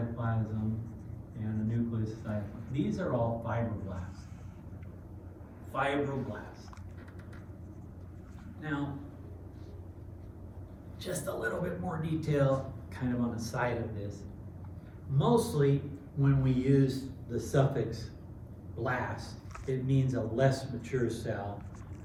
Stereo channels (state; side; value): identical; both; correlation 1.00